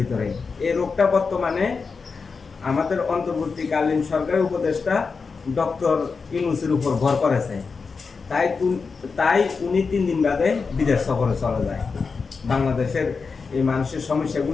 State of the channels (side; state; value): right; quieter; 4.9 dB